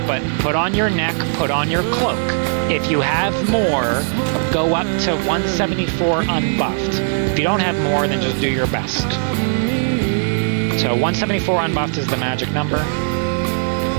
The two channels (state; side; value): silent; left; 61 dB below the other